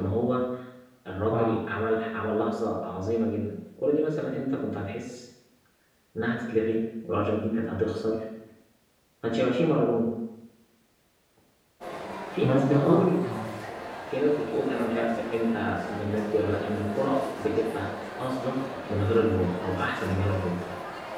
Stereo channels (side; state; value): both; identical; correlation 1.00